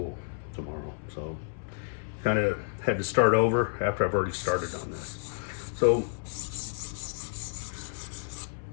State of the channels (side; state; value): right; silent; 58 dB below the other